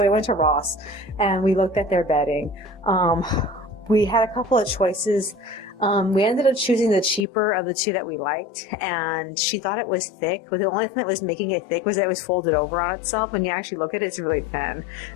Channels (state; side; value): drops out; right; at 7.2 s